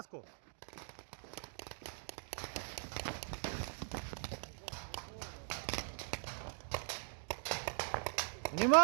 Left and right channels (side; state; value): left; silent; digital silence